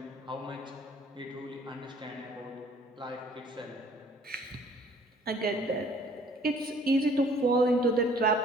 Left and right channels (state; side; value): normal; both; correlation 0.56